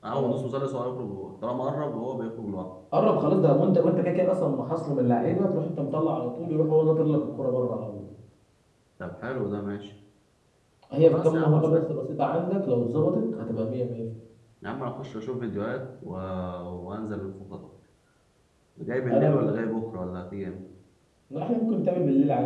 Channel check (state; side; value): identical; both; correlation 1.00